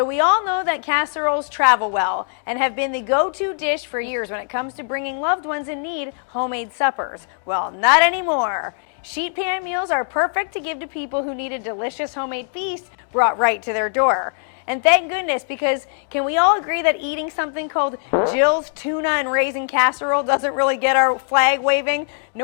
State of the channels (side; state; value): right; silent; digital silence